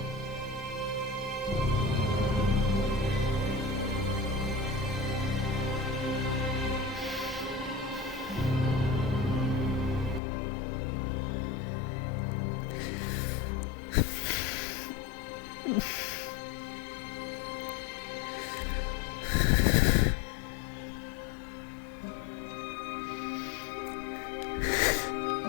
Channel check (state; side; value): drops out; right; at 10.2 s